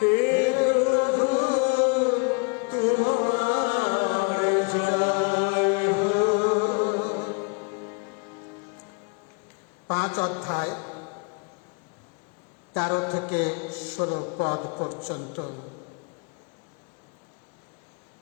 প্রভু তোমার জয় হোক। 5 অধ্যায় 13 থেকে 16 পদ পর্যন্ত।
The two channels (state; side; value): quieter; right; 34.1 dB